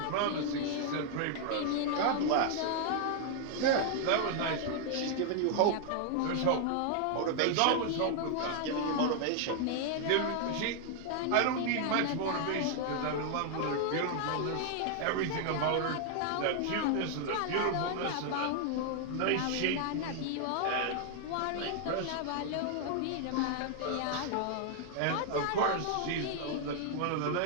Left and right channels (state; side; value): different; both; correlation 0.00